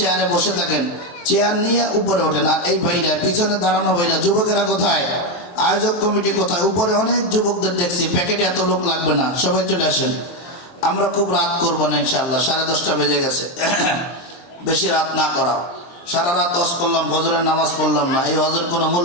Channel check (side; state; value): right; late; 23 ms